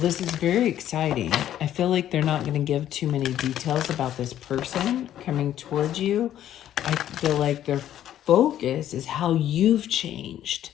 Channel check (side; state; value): right; quieter; 11.6 dB